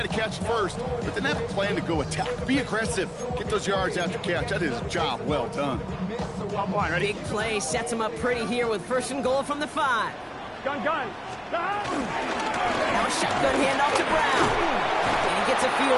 to catch it first, but then have a plan to go attack. Be aggressive. Get those yards after catch. That is a job well done. Big play sets him up pretty here with 1st and goal from the 5. Gun. Now a shotgun handoff to Brown. And he gets a feel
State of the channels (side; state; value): both; identical; correlation 1.00